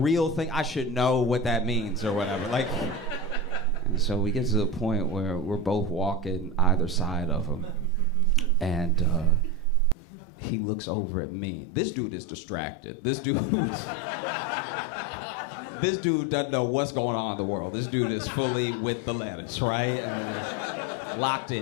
thing. I should know what that means or whatever. Like, and so we get to the point where we're both walking either side of him, and he looks over at me. This dude is distracted. This dude doesn't know what's going on in the world. This dude is fully with the lettuce, right? And locked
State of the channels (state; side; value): drops out; right; at 10.0 s